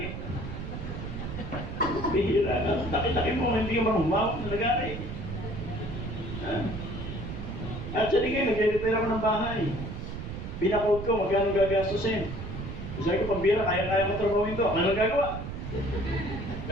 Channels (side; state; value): right; noise; rumble, 7 dB below the sound